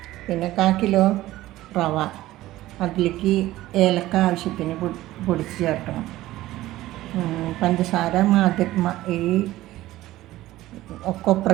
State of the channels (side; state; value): left; quieter; 16.1 dB